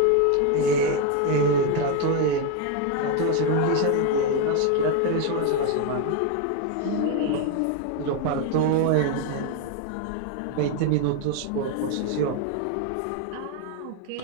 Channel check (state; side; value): different; both; correlation 0.02